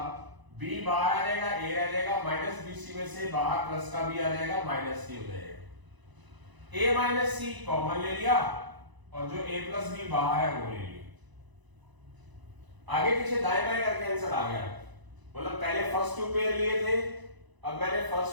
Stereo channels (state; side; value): late; left; 1.0 ms